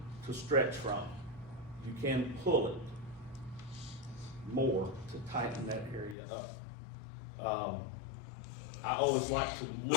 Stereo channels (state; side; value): drops out; right; at 6.2 s